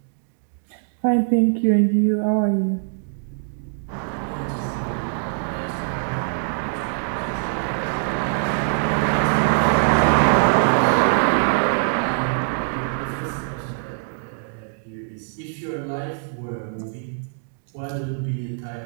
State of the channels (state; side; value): silent; left; digital silence